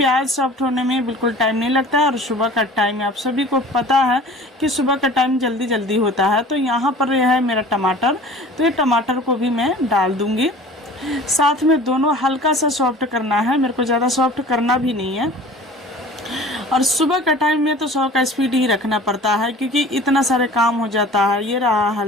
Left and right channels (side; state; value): both; normal; correlation 0.43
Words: सॉफ्ट होने में बिल्कुल टाइम नहीं लगता है। और सुबह का टाइम आप सभी को पता है कि सुबह का टाइम जल्दी जल्दी होता है। तो यहाँ पर यह है मेरा टमाटर, तो ये टमाटर को भी मैं डाल दूँगी। साथ में दोनों हल्का सा सॉफ्ट करना है, मेरे को ज़्यादा सॉफ्ट करना भी नहीं है। और सुबह का टाइम में तो 100 का स्पीड ही रखना पड़ता है, क्योंकि इतना सारे काम हो जाता है। ये रहा